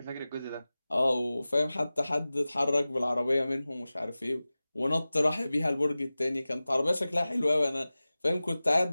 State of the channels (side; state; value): both; inverted; correlation -0.97